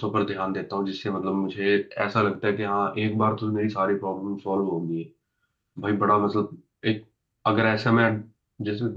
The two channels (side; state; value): both; identical; correlation 1.00